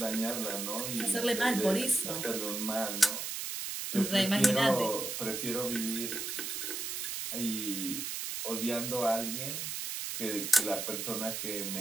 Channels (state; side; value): noise; right; hiss, 4 dB below the sound